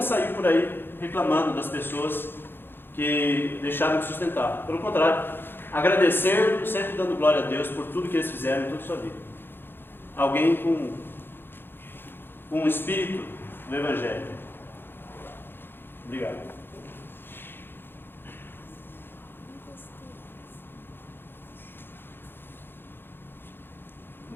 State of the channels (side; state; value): right; late; 0.10 ms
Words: saiu por aí reclamando das pessoas que deixaram de sustentar. Pelo contrário, agradecer, sempre dando glória a Deus por tudo que eles fizeram em toda a sua vida. Alguém com um espírito do Evangelho. Obrigado.